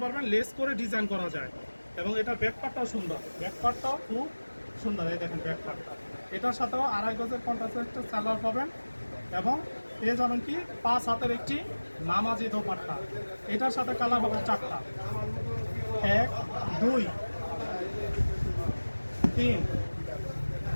পারবেন, লেস করে ডিজাইন করা যায়। এবং এটার ব্যাকপার্টটাও সুন্দর, ব্যাকপার্টটাও খুব সুন্দর। এই দেখেন ব্যাকপার্টটা, এটার সাথেও 2.5 গজের কন্ট্রাস্ট সালোয়ার পাবেন। এবং পেয়ে যাবেন কি 5 হাতের একটি নামাজি দোপাট্টা। এটার সাথে কালার হবে 4টা। 1, 2, 3,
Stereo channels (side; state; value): both; inverted; correlation -1.00